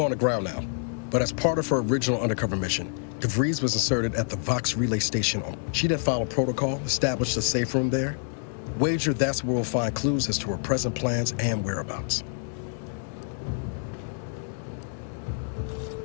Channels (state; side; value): silent; right; digital silence